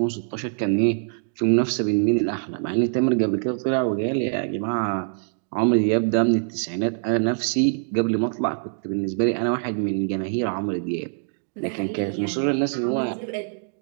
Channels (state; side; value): silent; left; digital silence